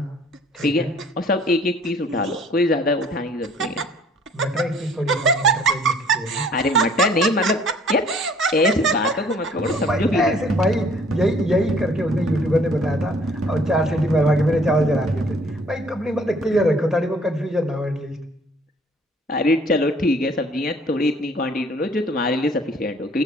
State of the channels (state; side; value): normal; both; correlation 0.57